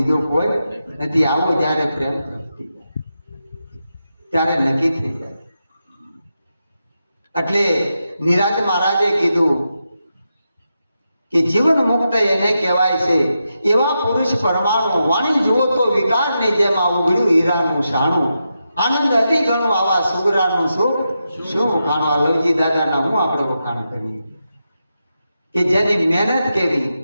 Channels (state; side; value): inverted; both; correlation -0.87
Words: કોઈ નથી. આવો જ્યારે પ્રેમ પ્રગતિ ત્યારે નક્કી થઈ જાય. એટલે નિરાંત મહારાજે કીધું કે જીવન મુક્ત એને કહેવાય છે. એવા પુરુષ પરમાણુ, વાણી જુઓ તો વિકારની જેમ આ ઉઘડ્યું હીરાનું શાણું. આનંદ અતિ ઘણું આવા સુગરાનું સુખ શું વખાણું. આ લવજી દાદાના હું આપણે વખાણ કરીએ કે જેની મહેનત કેવી.